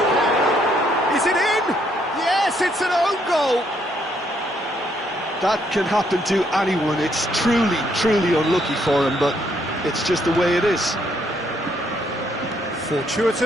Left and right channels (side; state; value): both; normal; correlation 0.71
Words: Is it in? Yes, it's an own goal! That can happen to anyone. It's truly, truly unlucky for him, but it's just the way it is.